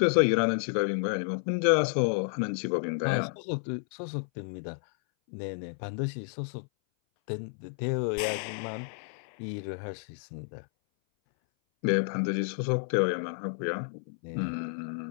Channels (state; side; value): silent; right; 57 dB below the other